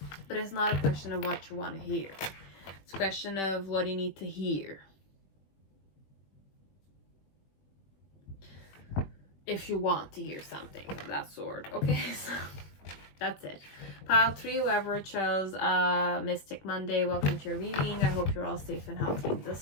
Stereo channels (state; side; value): late; right; 21 ms